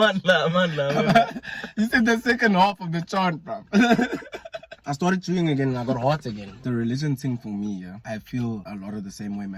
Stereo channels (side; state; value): both; identical; correlation 1.00